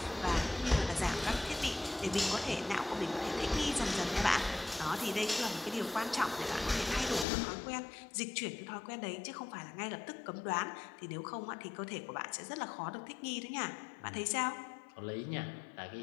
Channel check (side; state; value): right; drops out; at 7.2 s